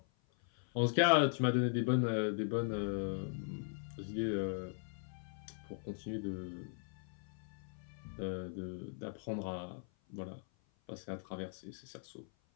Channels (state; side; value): silent; right; 52 dB below the other